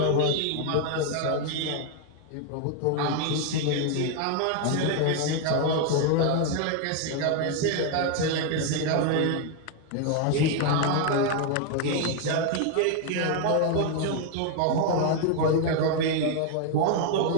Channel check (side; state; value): both; different; correlation 0.01